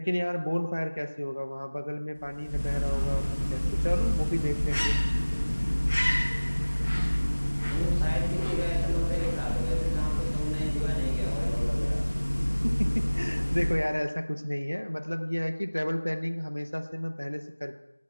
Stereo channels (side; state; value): both; inverted; correlation -1.00